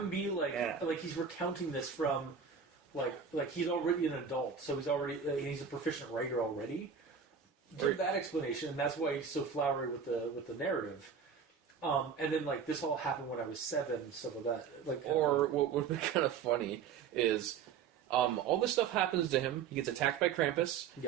be like he's recounting this from, like he's already an adult, so he's a proficient writer already. Give that explanation, and that's why he's so flowery with the narrative. And then, like, this all happened when I was 7, stuff like that. Like, or what would be kind of funny is all this stuff happens to him. He gets attacked by Krampus,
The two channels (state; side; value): quieter; left; 6.7 dB